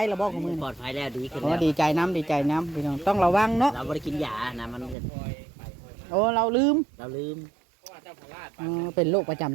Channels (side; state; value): left; drops out; at 5.0 s